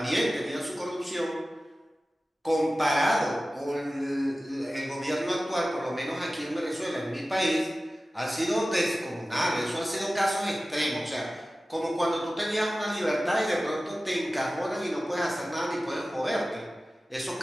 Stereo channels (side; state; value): both; normal; correlation 0.96